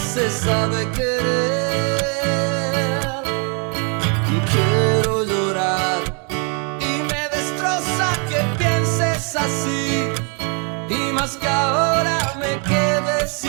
se sabe querer. Quiero llorar y me destroza que pienses así, y más que ahora me quede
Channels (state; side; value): quieter; left; 36.9 dB